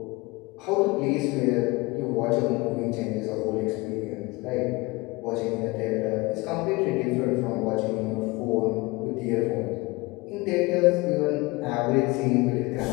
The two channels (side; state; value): right; quieter; 23.8 dB